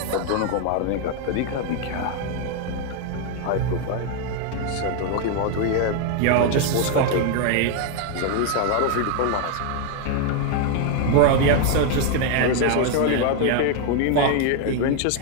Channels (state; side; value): different; both; correlation 0.01